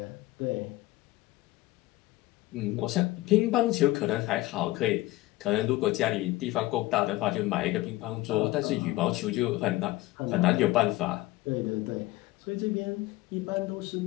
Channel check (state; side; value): quieter; right; 18.3 dB